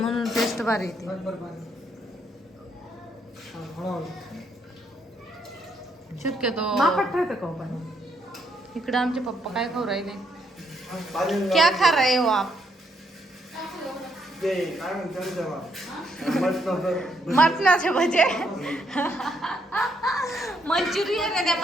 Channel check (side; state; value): both; normal; correlation 0.74